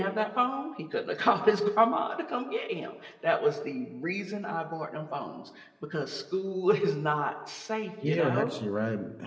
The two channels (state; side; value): identical; both; correlation 1.00